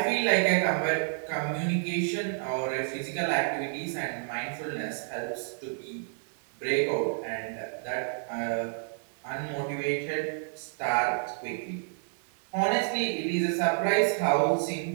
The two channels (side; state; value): left; silent; digital silence